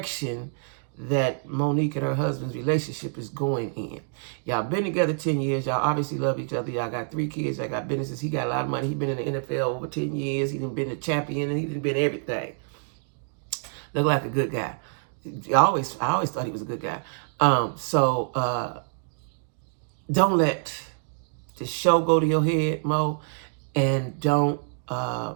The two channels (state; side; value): silent; left; digital silence